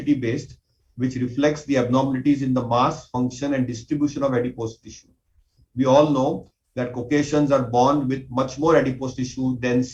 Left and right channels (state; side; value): identical; both; correlation 1.00